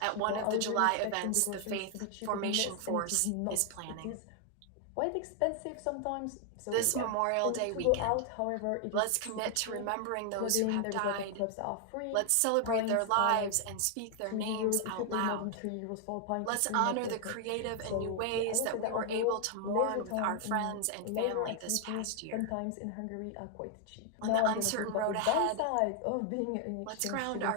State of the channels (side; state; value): both; different; correlation 0.00